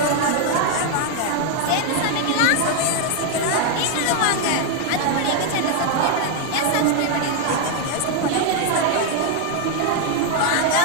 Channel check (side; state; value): both; different; correlation 0.01